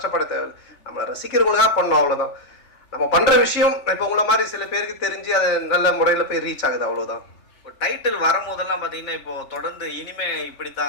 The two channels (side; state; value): right; late; 3.3 ms